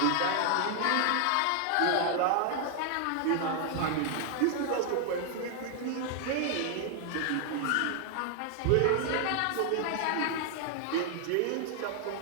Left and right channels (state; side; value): different; both; correlation 0.00